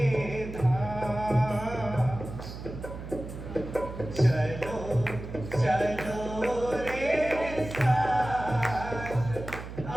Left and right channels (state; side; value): noise; right; hum, 10 dB below the sound